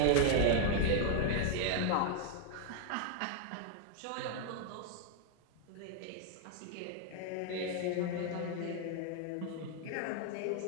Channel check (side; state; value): both; different; correlation 0.00